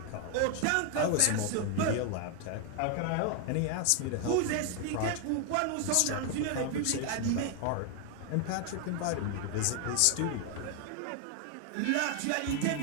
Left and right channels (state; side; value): different; both; correlation 0.00